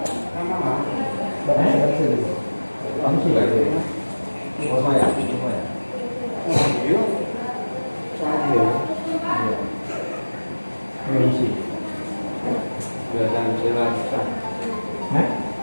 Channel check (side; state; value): both; inverted; correlation -1.00